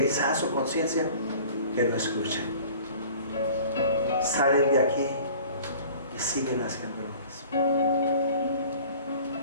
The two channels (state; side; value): inverted; both; correlation -0.46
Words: su conciencia que no escuchan. Salen de aquí y siguen haciendo lo mismo.